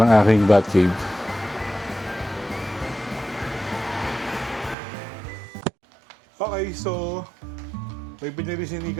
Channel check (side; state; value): left; drops out; at 4.8 s